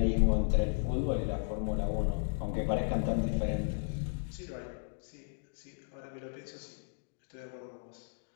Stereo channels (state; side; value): silent; right; digital silence